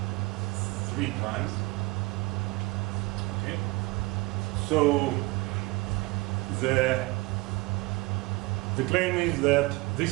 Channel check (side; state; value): left; quieter; 23.1 dB